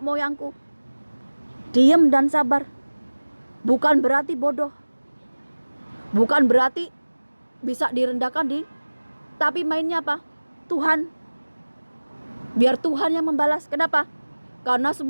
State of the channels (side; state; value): both; inverted; correlation -1.00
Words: Diem dan sabar. Bukan berarti bodoh, bukan berarti bisa direndahkan tapi mainnya apa? Tuhan. Biar Tuhan yang membalas. Kenapa? Karena